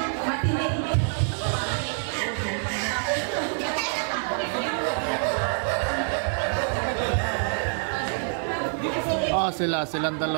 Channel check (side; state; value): left; silent; 61 dB below the other